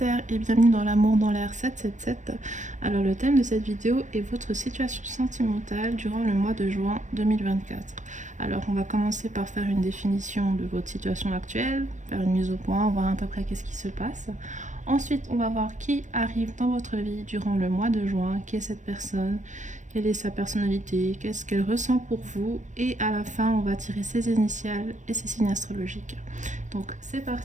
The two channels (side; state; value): left; late; 0.35 ms